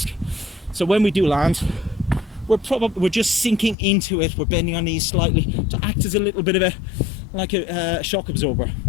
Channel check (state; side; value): drops out; right; at 3.8 s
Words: So when we do land, we're just sinking into it. We're bending our knees slightly to act as a little bit of a shock absorber.